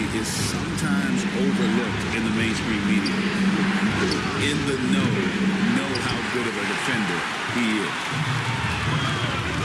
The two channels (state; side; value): identical; both; correlation 1.00